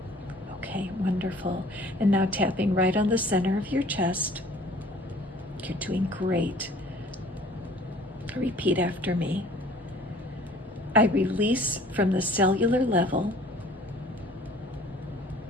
Okay, wonderful. And now tapping right on the center of your chest. You're doing great. Repeat after me. I release from the cellular level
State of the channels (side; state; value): both; normal; correlation 0.51